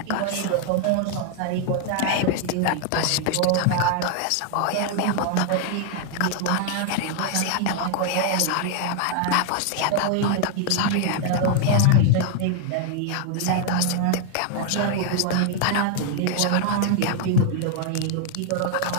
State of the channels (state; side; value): different; both; correlation 0.00